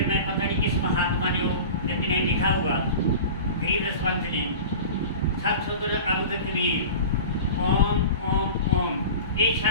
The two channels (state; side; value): inverted; both; correlation -0.35